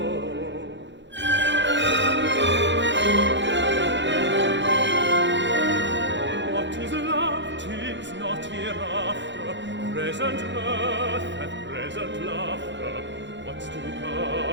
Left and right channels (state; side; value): late; left; 0.53 ms